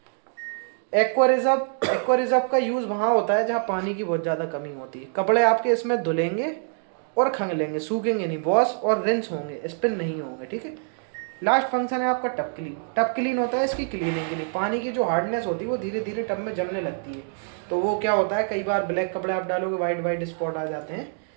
एक्वा रिजर्व का यूज़ वहाँ होता है जहाँ पानी की बहुत ज़्यादा कमी होती है। कपड़े आपके इसमें धुलेंगे और खंगलेंगे, सूखेंगे नहीं, वॉश और रिंस होंगे, स्पिन नहीं होंगे, ठीक है। लास्ट फंक्शन है आपका टब क्लीन। टब क्लीन होता है इसकी क्लीनिंग के लिए। पानी की जो हार्डनेस होती है वो धीरे धीरे टब में जमने लगती है, तो वो क्या होता है, कई बार ब्लैक कपड़े आप डालोगे, वाइट स्पॉट आ जाते हैं।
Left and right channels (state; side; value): silent; left; 62 dB below the other